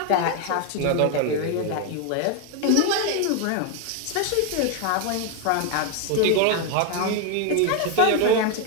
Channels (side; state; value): both; different; correlation 0.01